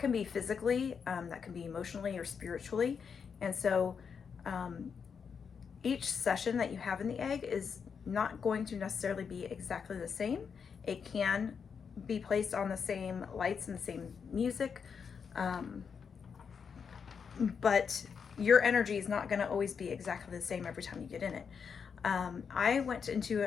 can be physically, that can be emotionally or spiritually. And so each session that you have in the egg is not going to necessarily be exactly the same. It can be placed on the same lights and the same music, but your energy is not going to always be exactly the same every time you get in it. I went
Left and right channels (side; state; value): right; quieter; 6.4 dB